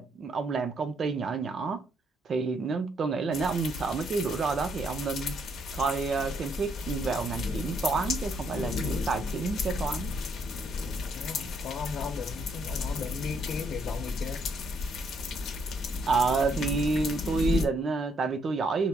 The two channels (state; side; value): normal; both; correlation 0.71